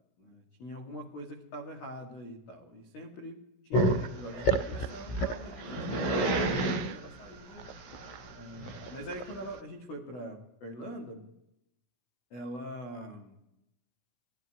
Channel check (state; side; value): late; right; 16 ms